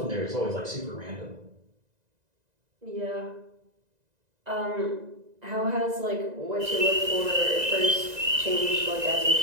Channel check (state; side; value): late; left; 2.0 ms